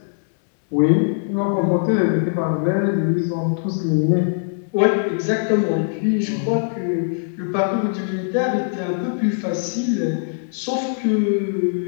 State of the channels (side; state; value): right; silent; digital silence